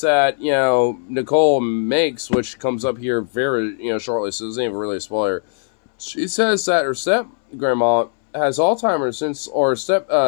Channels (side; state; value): right; silent; 65 dB below the other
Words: that, you know, Nicole makes, which comes up here very, you know, shortly, so it isn't even really a spoiler. She says that her step-grandma has Alzheimer's or